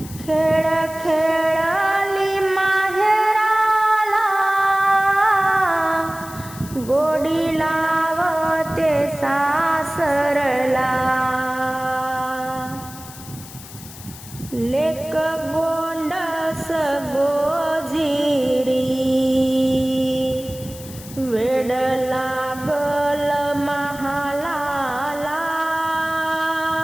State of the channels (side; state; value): left; noise; hiss, 16 dB below the sound